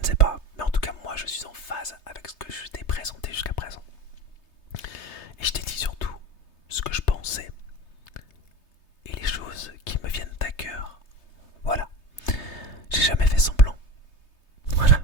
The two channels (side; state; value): right; late; 3.3 ms